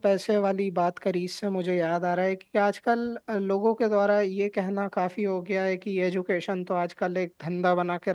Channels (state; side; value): identical; both; correlation 1.00